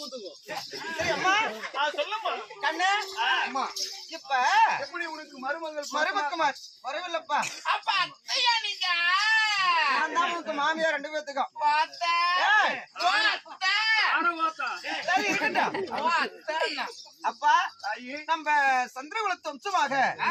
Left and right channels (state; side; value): identical; both; correlation 1.00